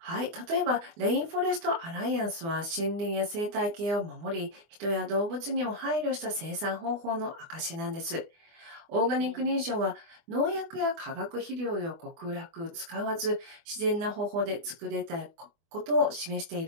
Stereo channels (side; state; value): left; late; 24 ms